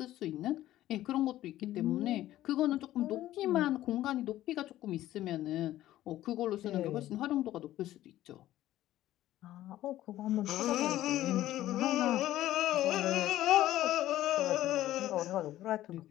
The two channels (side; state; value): right; quieter; 14.2 dB